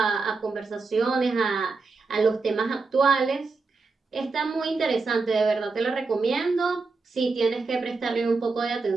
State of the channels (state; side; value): quieter; left; 4.1 dB